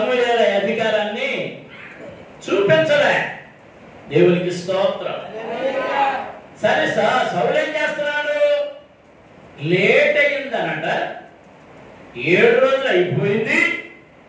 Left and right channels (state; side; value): identical; both; correlation 1.00